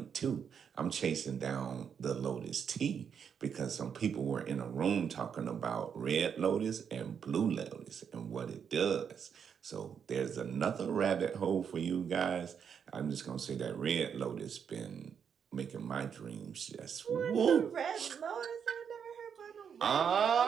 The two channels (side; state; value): left; quieter; 7.3 dB